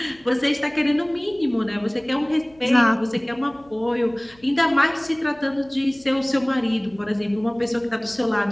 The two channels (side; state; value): left; noise; hum, 28 dB below the sound